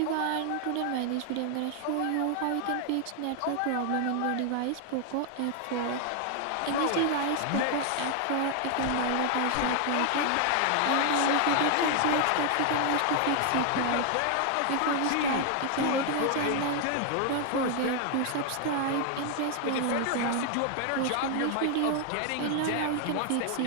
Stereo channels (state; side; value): different; both; correlation 0.00